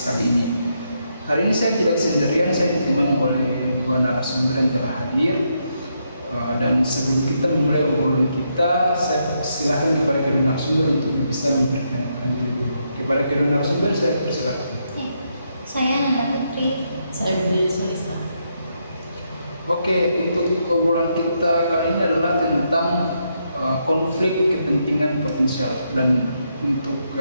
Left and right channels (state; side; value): inverted; both; correlation -0.79